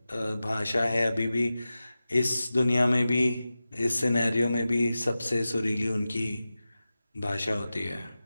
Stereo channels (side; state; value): both; inverted; correlation -0.94